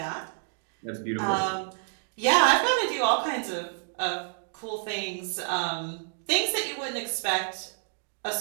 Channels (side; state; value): left; silent; 59 dB below the other